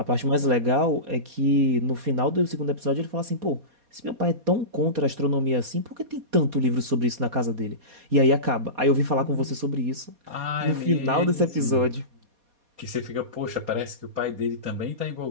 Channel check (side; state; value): left; late; 4.2 ms